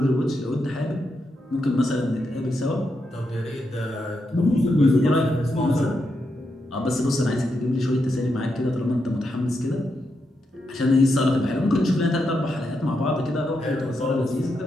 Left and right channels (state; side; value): normal; both; correlation 0.83